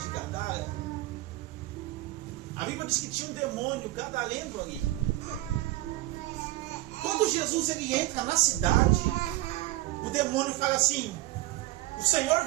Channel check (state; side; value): quieter; left; 17.5 dB